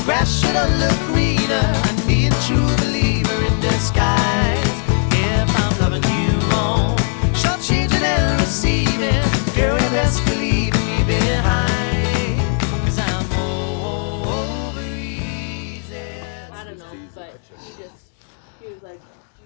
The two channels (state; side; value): silent; right; 58 dB below the other